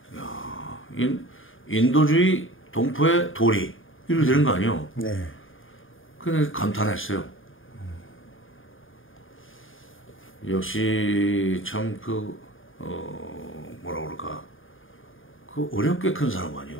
인도주의 동포의 도리 이렇게 되는 거 아니요. 네. 근데 감탄했어요. 역시 참 뭐라 그럴까 그 어렵게 큰 사람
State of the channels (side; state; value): right; late; 0.58 ms